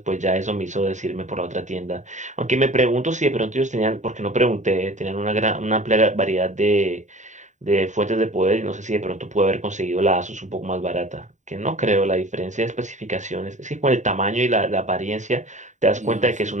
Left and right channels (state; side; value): late; left; 0.35 ms